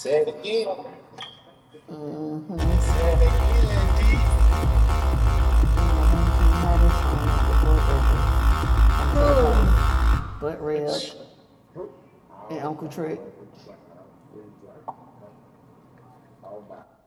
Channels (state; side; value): identical; both; correlation 1.00